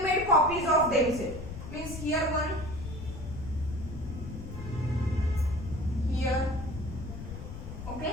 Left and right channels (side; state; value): left; noise; rumble, 9 dB below the sound